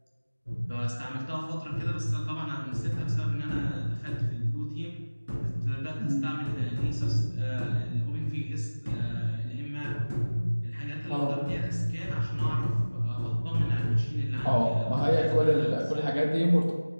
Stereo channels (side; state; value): both; inverted; correlation -1.00